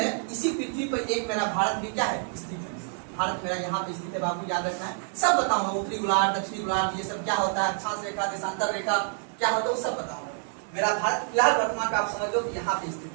इसी पृथ्वी पर एक मेरा भारत भी क्या है? स्थित है। भारत मेरा यहाँ पे स्थित है बाबू, याद रखना है। सब बताऊंगा, उत्तरी गोलार्ध, दक्षिणी गोलार्ध, ये सब क्या होता है, अक्षांश रेखा, देशांतर रेखा क्या होता है, वो सब बताऊंगा। मेरा भारत फिलहाल वर्तमान में आप समझ लो कि यहाँ पे स्थित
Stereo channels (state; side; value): silent; left; 58 dB below the other